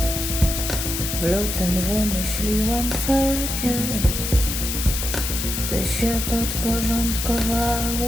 W lutym wymyśliłam ferie. Ty się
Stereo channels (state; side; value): noise; left; hiss, 3 dB below the sound